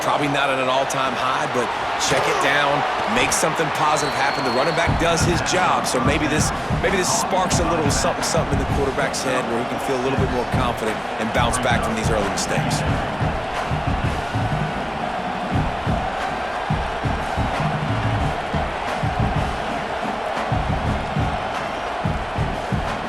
probably not at an all-time high, but check it down, make something positive happen. The running back does his job, so maybe this sparks a little something in the quarterback's head where he can feel a little bit more confident and bounce back from these early mistakes.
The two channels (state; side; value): identical; both; correlation 1.00